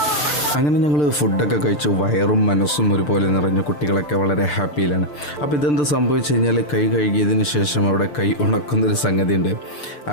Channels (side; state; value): right; late; 6.8 ms